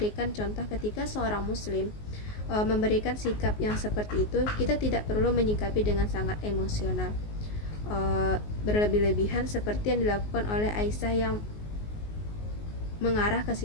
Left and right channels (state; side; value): late; right; 19 ms